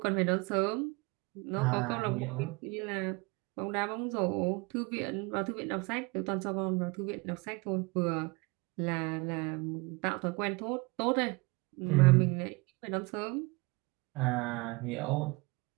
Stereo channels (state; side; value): quieter; left; 26.2 dB